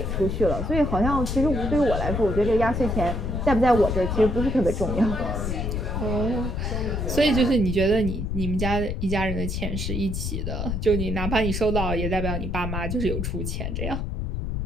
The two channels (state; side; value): noise; left; rumble, 2 dB below the sound